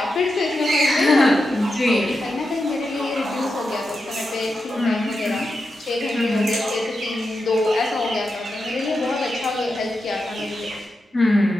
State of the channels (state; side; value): normal; both; correlation 0.88